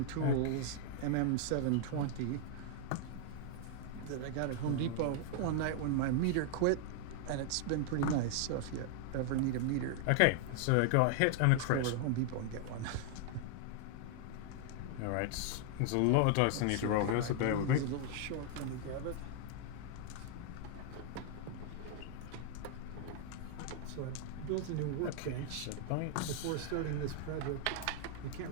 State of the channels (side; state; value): both; different; correlation 0.00